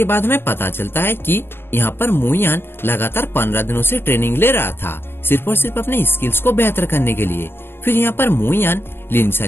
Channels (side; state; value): right; late; 0.11 ms